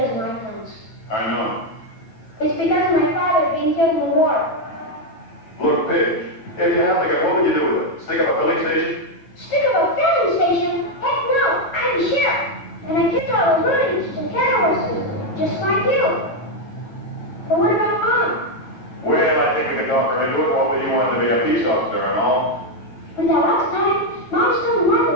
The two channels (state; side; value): late; right; 9.1 ms